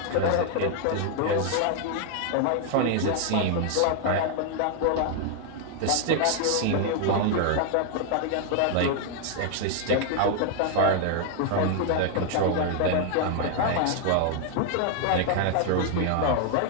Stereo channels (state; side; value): different; both; correlation 0.00